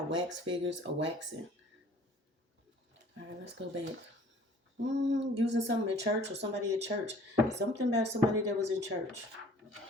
wax figures or waxing. All right, let's go back. Using something in church or somebody at church. Something about somebody that was in church.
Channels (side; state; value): both; normal; correlation 0.52